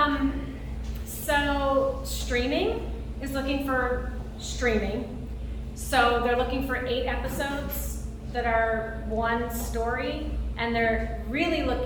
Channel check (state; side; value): identical; both; correlation 1.00